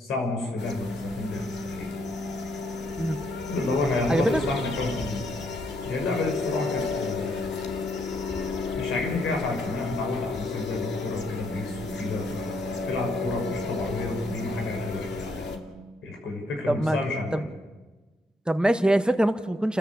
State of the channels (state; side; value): normal; both; correlation 0.74